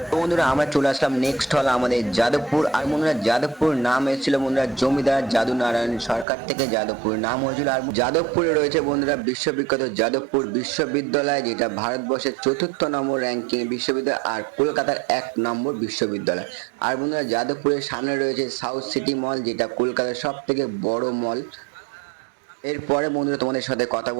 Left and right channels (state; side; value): drops out; left; at 6.2 s